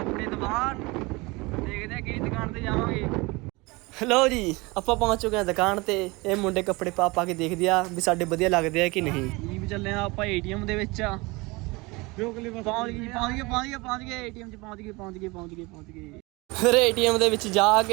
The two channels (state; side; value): quieter; left; 24.4 dB